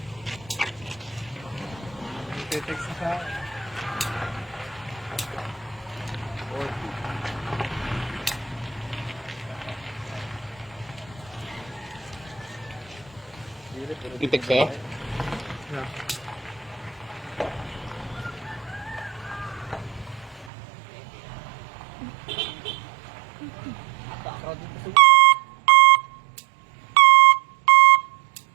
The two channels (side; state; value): left; drops out; at 20.5 s